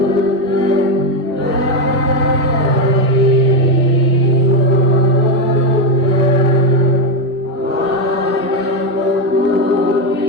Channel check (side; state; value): both; normal; correlation 0.09